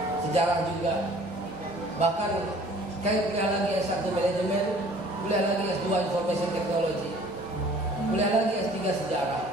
sejarah juga, bahkan saya kuliah lagi S1 manajemen, kuliah lagi S2 information technology, kuliah lagi S3 sejarah,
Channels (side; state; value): both; normal; correlation 0.52